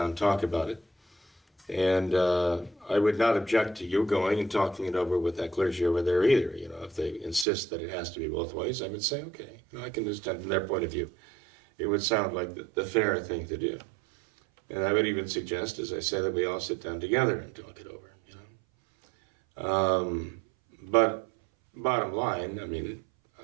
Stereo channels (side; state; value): left; drops out; at 7.5 s